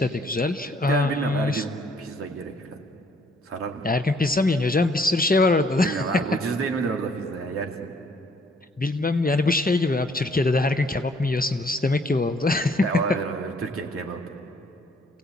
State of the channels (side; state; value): both; normal; correlation 0.63